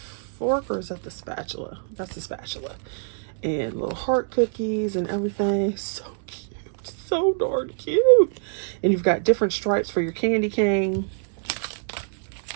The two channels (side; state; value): left; silent; digital silence